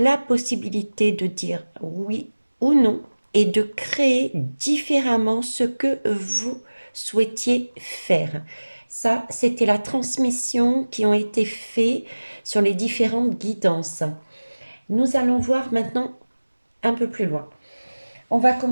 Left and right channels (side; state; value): both; inverted; correlation -1.00